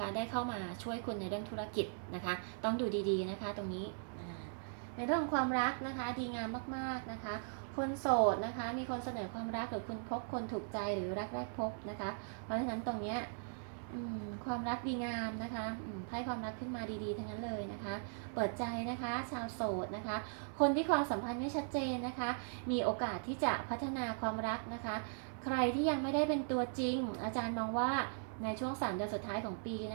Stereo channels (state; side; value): silent; left; digital silence